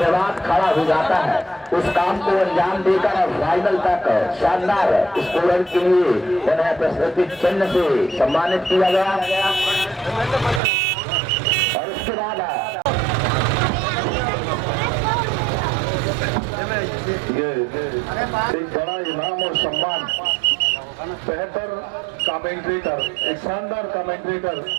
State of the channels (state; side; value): drops out; left; at 10.6 s